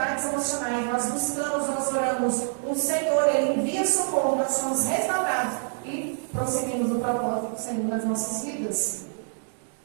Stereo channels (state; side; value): silent; left; 61 dB below the other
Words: emocionais, nós buscamos, nós oramos, o Senhor, Ele envia socorro, nós somos restaurados e prosseguimos no propósito do Senhor nas nossas vidas.